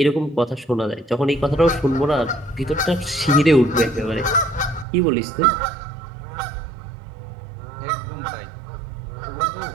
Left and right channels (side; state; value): left; drops out; at 4.9 s